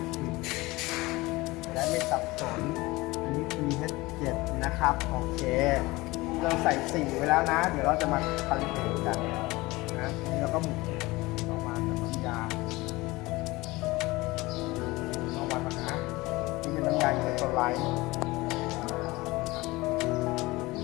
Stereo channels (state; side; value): quieter; right; 21.3 dB